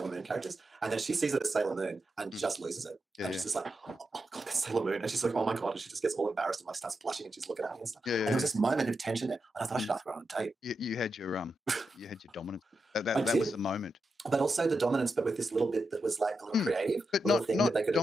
Moon characters. And then she sees it as Sailor Moon and just loses it. And she's just like, oh God, that's Sailor Moon. And she's like, oh my God. And she just gets all embarrassed and like starts blushing and she's looking at me and stuff. And there was this moment of tension there. And I thought I should ask her on a date. You had your dominance. That was the moment. But also the dominance, but with this little bit that was like a little creative, but not that they could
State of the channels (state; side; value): normal; both; correlation 0.87